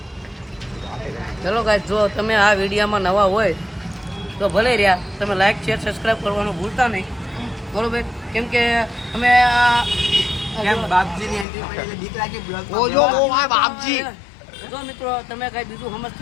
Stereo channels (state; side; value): drops out; right; at 11.5 s